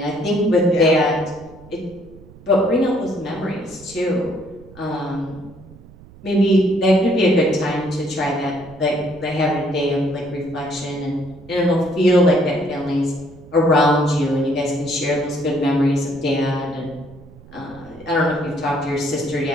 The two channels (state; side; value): noise; right; rumble, 21 dB below the sound